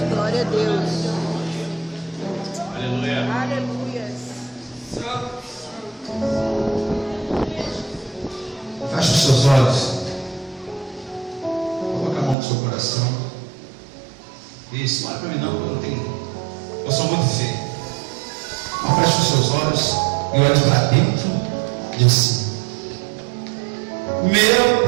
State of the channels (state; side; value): drops out; left; at 12.4 s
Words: Glória a Deus. Aleluia. Aleluia. Feche os seus olhos. Coloque a mão no seu coração. Isso, não olha para mim não, porque eu não tenho. Eu sou muito feio. Feche os seus olhos e olhe para dentro de si.